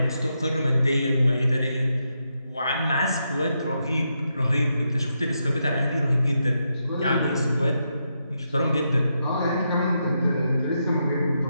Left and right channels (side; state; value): both; inverted; correlation -0.83